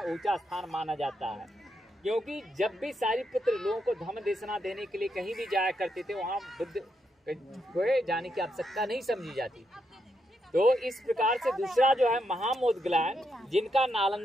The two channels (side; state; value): both; normal; correlation 0.81